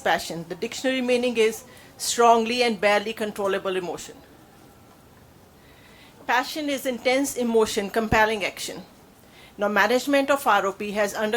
The dictionary meaning is strongly and barely controllable emotion. Passion is intense emotion, compelling action. Now, management of ROP has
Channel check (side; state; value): both; identical; correlation 1.00